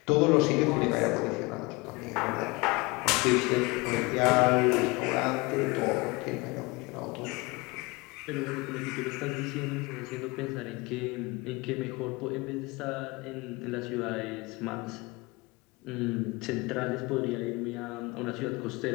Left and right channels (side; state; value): right; quieter; 24.9 dB